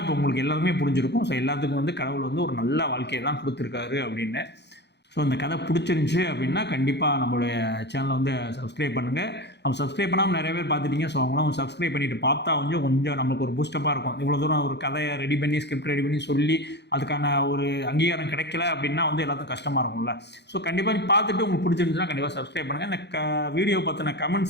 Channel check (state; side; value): late; right; 0.50 ms